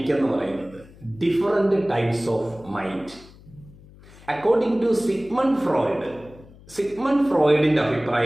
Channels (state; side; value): noise; left; hum, 22 dB below the sound